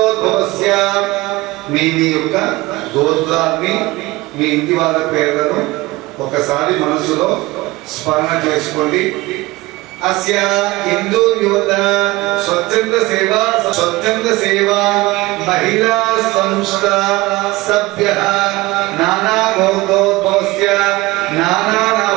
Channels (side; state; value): left; quieter; 20.6 dB